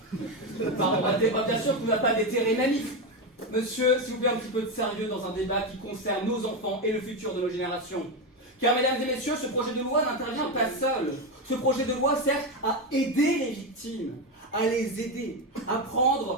Pardon, bien sûr qu'on ne va pas déterrer mamie. Monsieur, s'il vous plaît, un petit peu de sérieux dans un débat qui concerne nos enfants et le futur de nos générations. Car, mesdames et messieurs, ce projet de loi n'intervient pas seul. Ce projet de loi sert à aider les victimes, à les aider, à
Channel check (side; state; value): both; normal; correlation 0.12